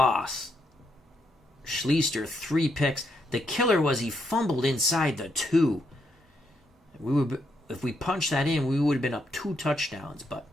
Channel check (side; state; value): both; normal; correlation 0.78